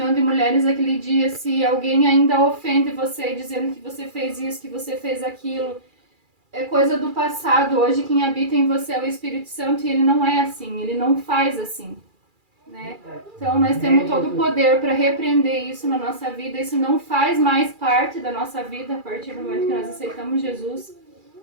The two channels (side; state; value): left; late; 2.4 ms